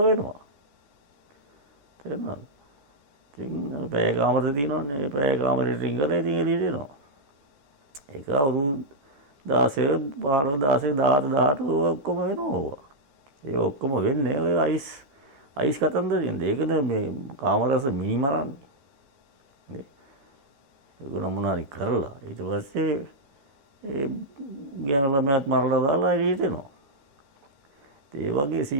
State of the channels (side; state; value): left; late; 14 ms